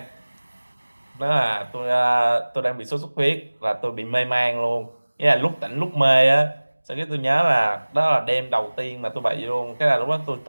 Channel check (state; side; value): inverted; both; correlation -1.00